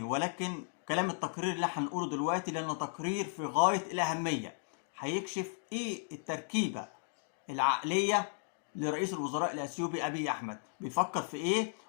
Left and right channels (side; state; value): right; silent; digital silence